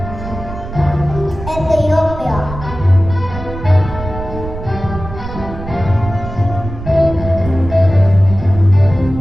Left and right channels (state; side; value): noise; right; rumble, 10 dB below the sound